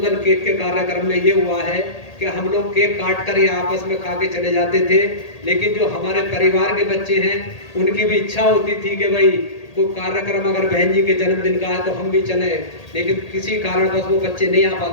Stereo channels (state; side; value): late; right; 1.8 ms